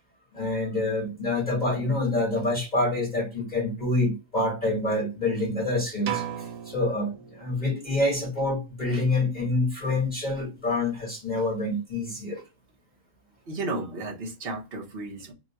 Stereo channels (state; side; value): normal; both; correlation 0.25